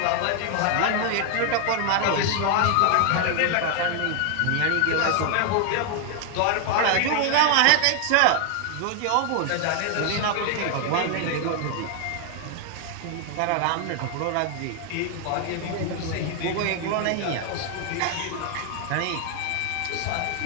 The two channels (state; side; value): different; both; correlation 0.00